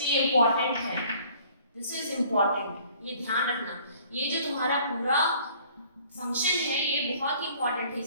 ये इंपॉर्टेंट है, दिस इज इंपॉर्टेंट, ये ध्यान रखना। ये जो तुम्हारा पूरा फंक्शन है ये बहुत ही इंपॉर्टेंट है,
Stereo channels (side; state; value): both; inverted; correlation -0.55